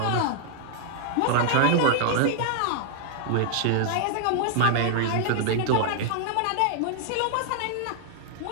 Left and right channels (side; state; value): both; different; correlation 0.00